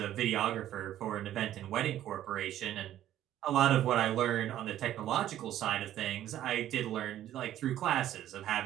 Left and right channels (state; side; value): quieter; left; 12.4 dB